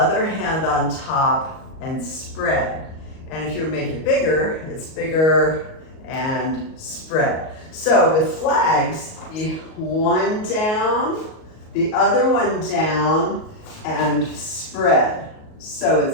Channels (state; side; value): late; right; 38 ms